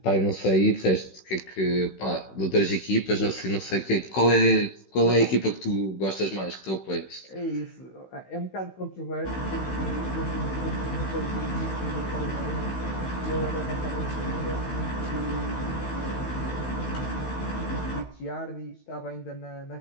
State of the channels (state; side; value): late; right; 16 ms